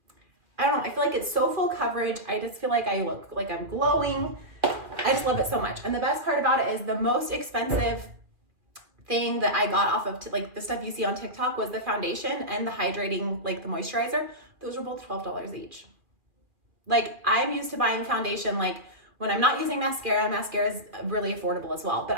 I don't know, I feel like it's so full coverage. I just feel like I look like I'm glowing. I just love it so much. And the best part about it is the most expensive thing that I got off of like the stuff you see on TikTok was the foundation and the hydrating, like the moisturizer. Those were both $12 each. Like I'm used to buying foundation, like when I'm not using mascara is really affordable as well.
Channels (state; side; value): late; left; 2.4 ms